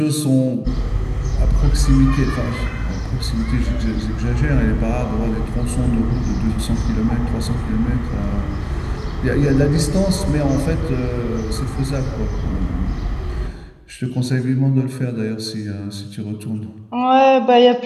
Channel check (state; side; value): identical; both; correlation 1.00